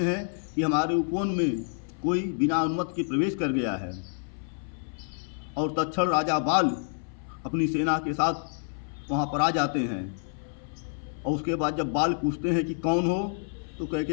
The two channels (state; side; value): silent; right; 59 dB below the other